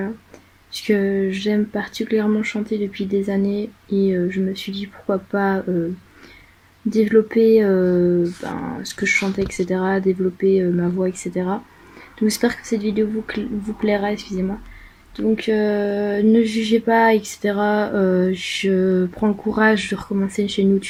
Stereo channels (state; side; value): identical; both; correlation 1.00